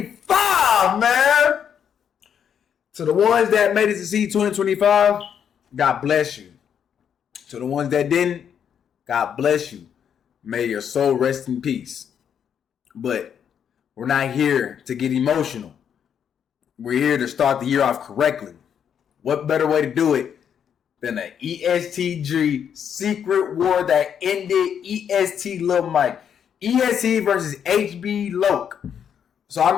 man. To the ones that made it to see 2025, God bless you. To the ones that didn't, God bless you. May your soul rest in peace. But we're not here to get emotional. We're here to start the year off correctly. What better way to do it than an EST Gee Secret War that ended EST LU MIKE. EST versus Hblocc. So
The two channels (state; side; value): quieter; right; 8.2 dB